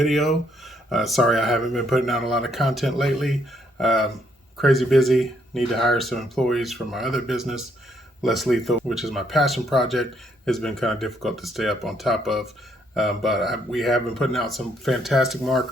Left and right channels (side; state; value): both; normal; correlation 0.71